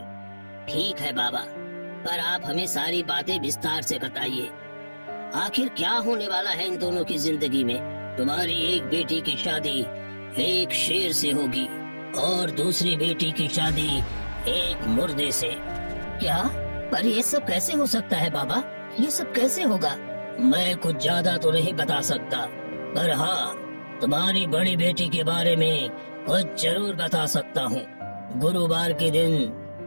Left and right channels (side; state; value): both; inverted; correlation -1.00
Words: ठीक है बाबा, पर आप हमें सारी बातें विस्तार से बताइए। आखिर क्या होने वाला है इन दोनों की जिंदगी में? तुम्हारी एक बेटी की शादी एक शेर से होगी और दूसरी बेटी की शादी एक मुर्दे से। क्या? पर ये सब कैसे हो सकता है बाबा? ये सब कैसे होगा? मैं कुछ ज्यादा तो नहीं बता सकता, पर हाँ, तुम्हारी बड़ी बेटी के बारे में कुछ जरूर बता सकता हूँ। गुरुवार के